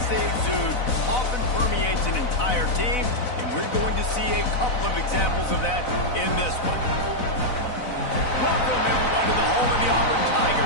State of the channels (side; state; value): right; late; 4.0 ms